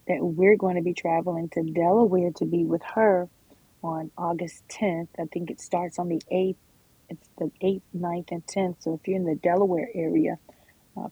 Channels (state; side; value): identical; both; correlation 1.00